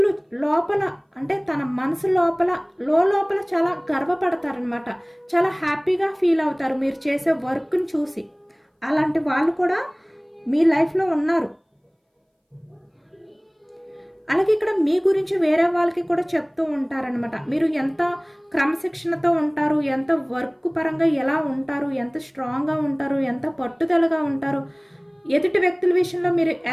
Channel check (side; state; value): both; identical; correlation 1.00